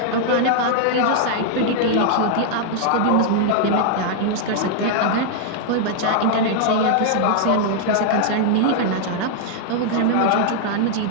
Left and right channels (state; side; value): different; both; correlation -0.01